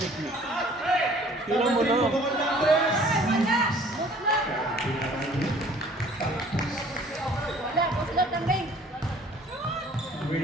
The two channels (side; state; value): both; normal; correlation 0.53